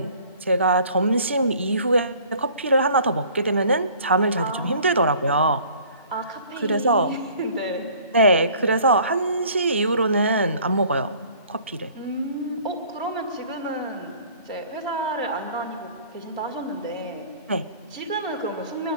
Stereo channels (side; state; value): both; inverted; correlation -0.52